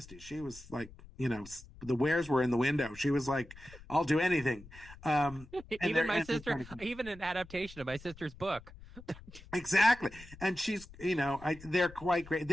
she was like, you know, the wares were in the window. She was like, I'll do anything. Even my sister, even an adaptation of my sister's book. Exactly, and she's, you know, they're quite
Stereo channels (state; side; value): noise; left; rumble, 19 dB below the sound